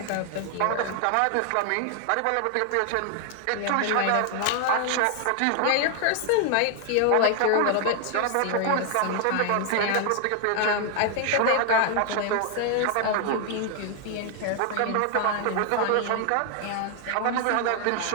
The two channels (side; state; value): both; different; correlation 0.00